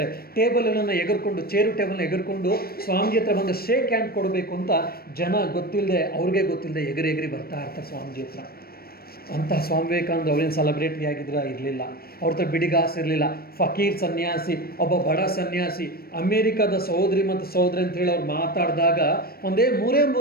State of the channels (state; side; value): late; right; 0.44 ms